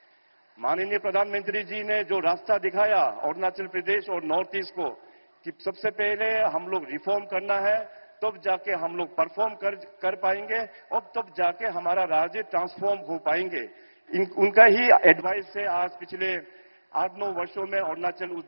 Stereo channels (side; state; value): both; inverted; correlation -1.00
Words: माननीय प्रधानमंत्री जी ने जो रास्ता दिखाया अरुणाचल प्रदेश और नॉर्थ ईस्ट को कि सबसे पहले हम लोग रिफॉर्म करना है, तब जाके हम लोग परफॉर्म कर पाएंगे और तब जाके हमारा राज्य ट्रांसफॉर्म हो पाएंगे। उनका ही एडवाइस से आज पिछले 8-9 वर्षों में अरुणाचल उस